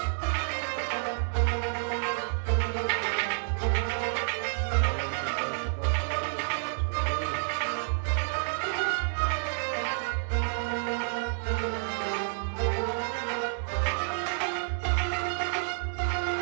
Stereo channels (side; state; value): left; silent; digital silence